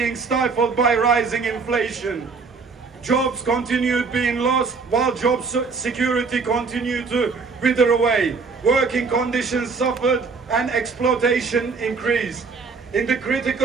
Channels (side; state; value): left; quieter; 4.7 dB